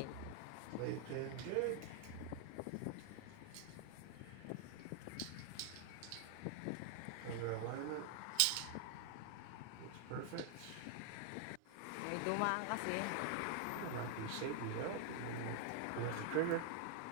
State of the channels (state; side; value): different; both; correlation 0.00